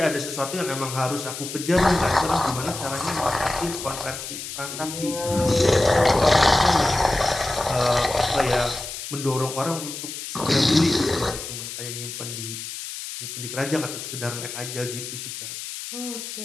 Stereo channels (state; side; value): noise; left; hiss, 8 dB below the sound